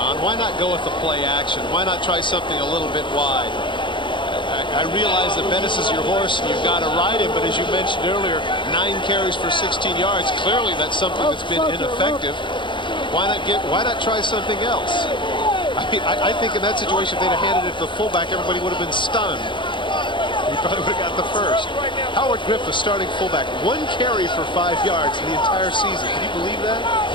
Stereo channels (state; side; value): late; right; 0.23 ms